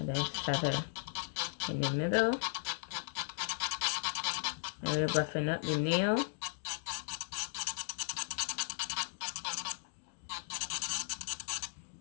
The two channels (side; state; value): right; silent; digital silence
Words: then feather in the middle. And we're roughing up the nail.